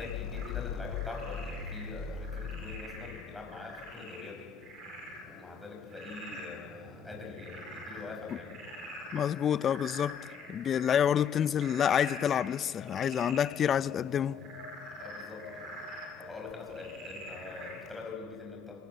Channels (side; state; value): right; quieter; 7.6 dB